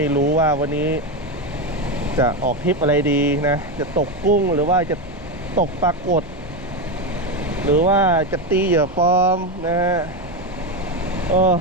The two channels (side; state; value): both; normal; correlation 0.13